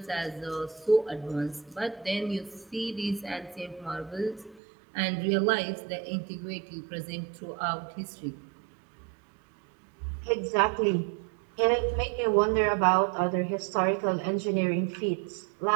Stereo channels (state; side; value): drops out; left; at 4.6 s